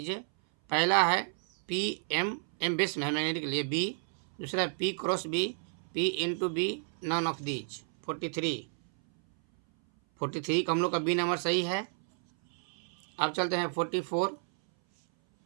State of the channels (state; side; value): silent; left; 57 dB below the other